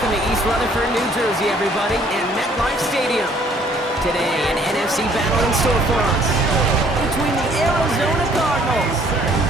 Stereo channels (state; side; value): normal; both; correlation 0.61